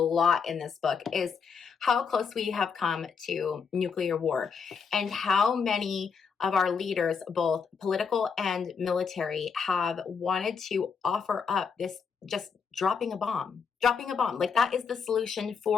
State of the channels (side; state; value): right; quieter; 6.0 dB